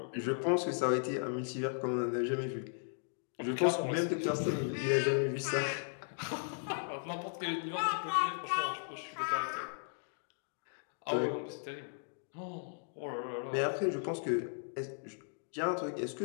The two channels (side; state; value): right; silent; digital silence